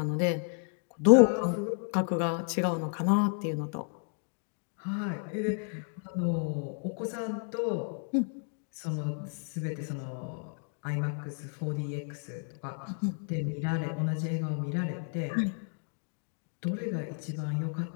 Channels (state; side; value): silent; right; 56 dB below the other